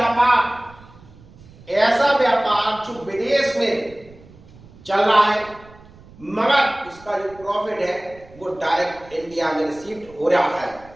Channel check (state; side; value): noise; right; rumble, 23 dB below the sound